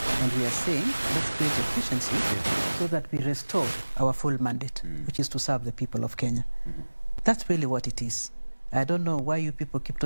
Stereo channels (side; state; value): both; inverted; correlation -1.00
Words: And we are saying, let's create efficiency so that we restore our full mandate, which is to serve the people of Kenya. That's really what it is. I don't know why you people keep